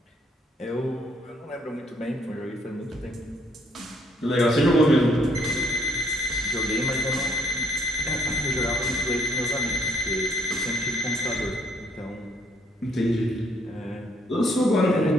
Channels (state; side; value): normal; both; correlation 0.68